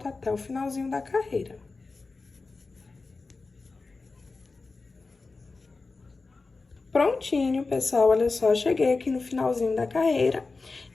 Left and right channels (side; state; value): right; quieter; 3.9 dB